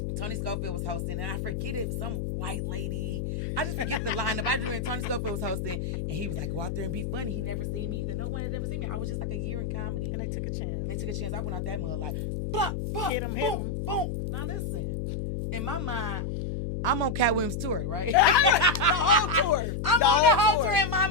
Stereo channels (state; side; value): noise; left; hum, 3 dB below the sound